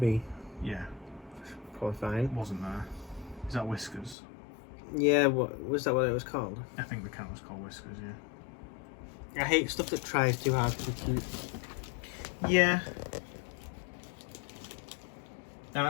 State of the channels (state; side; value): drops out; right; at 4.2 s